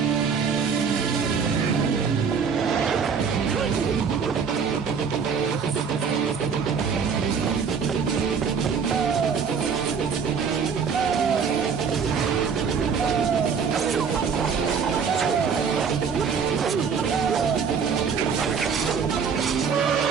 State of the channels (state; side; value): quieter; left; 6.2 dB